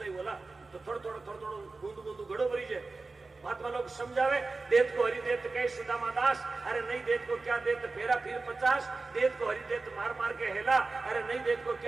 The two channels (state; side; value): quieter; left; 3.7 dB